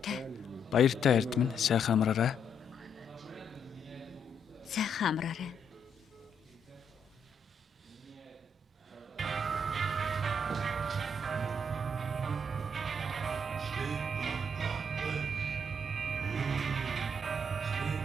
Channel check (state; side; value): normal; both; correlation 0.74